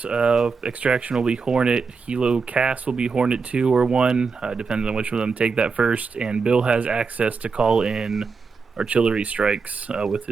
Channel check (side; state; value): left; quieter; 4.9 dB